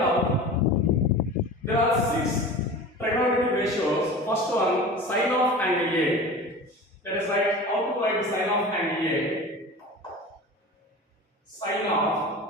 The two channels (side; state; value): both; normal; correlation 0.35